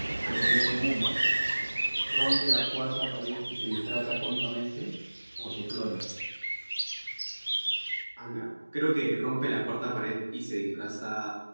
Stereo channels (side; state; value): both; inverted; correlation -1.00